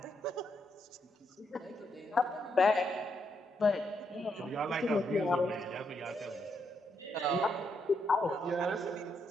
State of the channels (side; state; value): both; normal; correlation 0.78